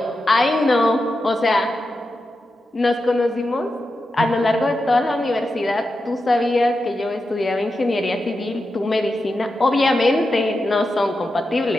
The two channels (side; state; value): both; normal; correlation 0.89